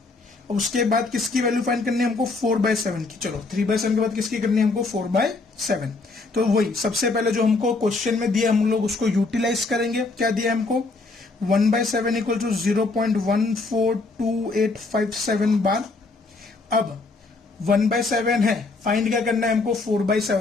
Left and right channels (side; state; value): right; quieter; 3.6 dB